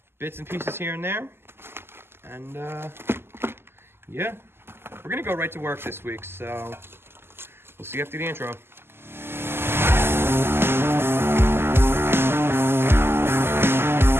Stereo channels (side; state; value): left; late; 0.12 ms